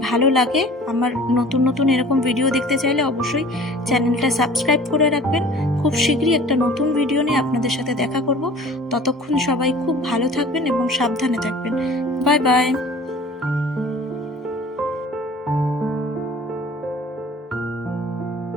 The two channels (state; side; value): normal; both; correlation 0.46